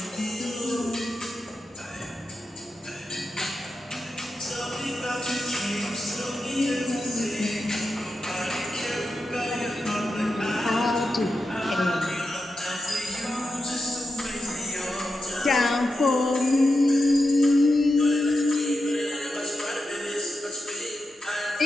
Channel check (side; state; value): both; normal; correlation 0.89